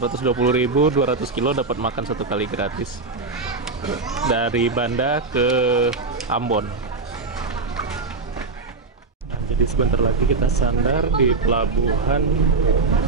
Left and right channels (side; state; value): left; quieter; 4.0 dB